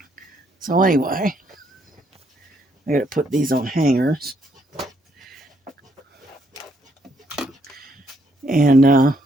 so anyway, I got to put these on hangers. And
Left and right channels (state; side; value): normal; both; correlation 0.72